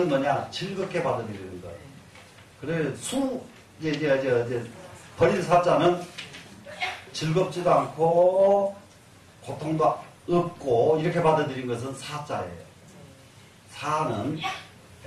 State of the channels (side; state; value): both; identical; correlation 1.00